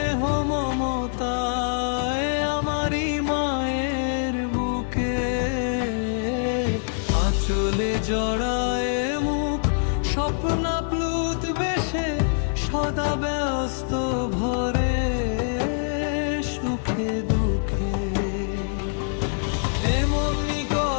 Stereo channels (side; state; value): right; silent; digital silence